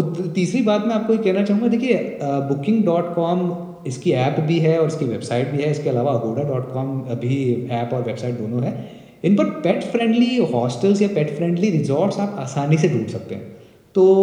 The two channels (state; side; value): identical; both; correlation 1.00